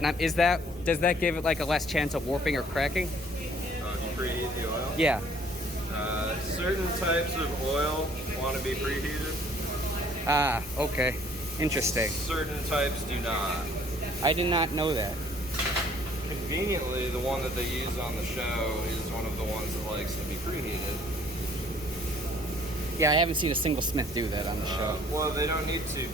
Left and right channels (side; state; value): both; normal; correlation 0.58